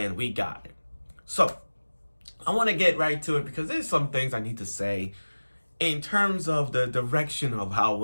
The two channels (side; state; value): both; inverted; correlation -1.00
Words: we got it. So, I want to get right to it because there's some things I need to say in terms of the direction of how